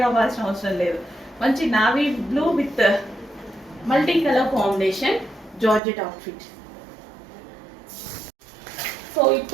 అవ్వాల్సిన అవసరం లేదు. మంచి navy blue with multi colour combination georgette outfit. So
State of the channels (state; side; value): drops out; left; at 5.8 s